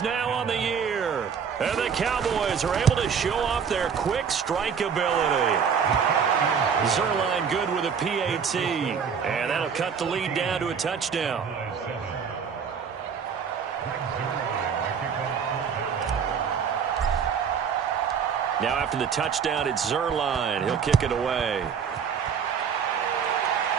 now on the year. And the Cowboys are able to show off their quick strike ability. Zerline good with a PAT. And that'll cut the lead down to a touchdown. Now after the touchdown, it's Zerline. He'll kick it away.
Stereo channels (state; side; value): quieter; left; 6.8 dB